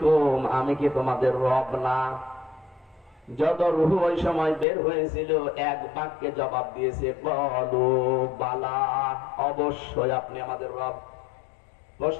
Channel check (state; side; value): drops out; right; at 4.7 s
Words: আমি কি তোমাদের রব না? যত রূহ ওই সময় বের হয়েছিল এক বাক্যে জবাব দিয়েছে, ক্বালু বালা, অবশ্যই আপনি আমাদের রব।